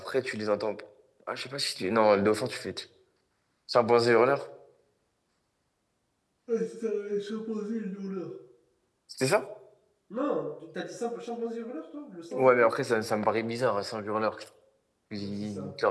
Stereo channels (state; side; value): identical; both; correlation 1.00